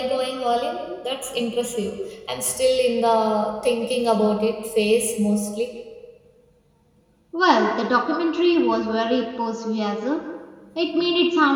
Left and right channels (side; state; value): both; identical; correlation 1.00